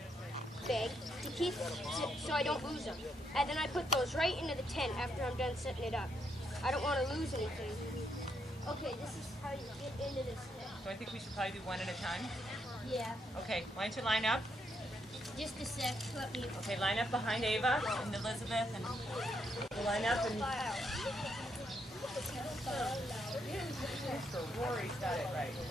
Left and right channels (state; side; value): normal; both; correlation 0.77